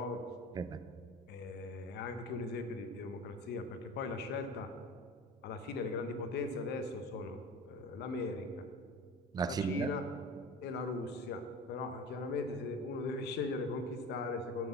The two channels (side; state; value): both; normal; correlation 0.35